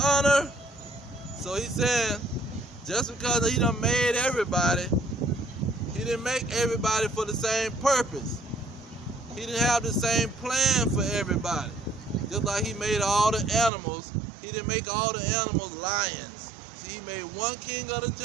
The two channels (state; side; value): drops out; left; at 13.7 s